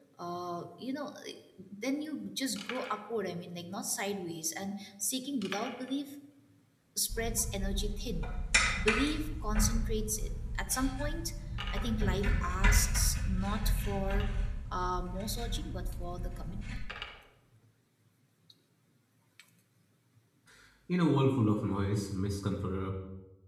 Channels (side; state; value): both; identical; correlation 1.00